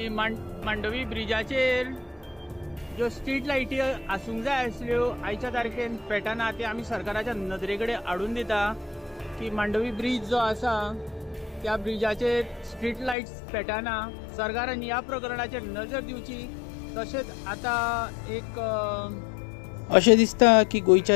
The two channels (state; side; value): drops out; right; at 13.2 s